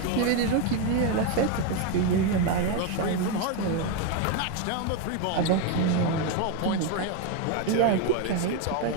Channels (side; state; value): both; different; correlation 0.02